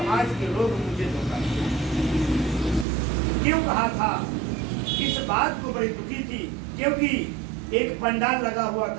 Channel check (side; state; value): left; drops out; at 2.9 s